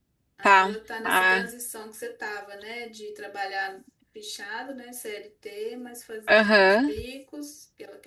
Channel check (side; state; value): both; identical; correlation 1.00